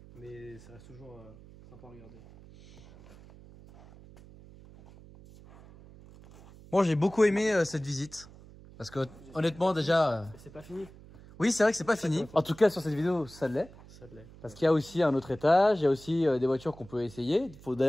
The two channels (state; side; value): noise; right; hum, 21 dB below the sound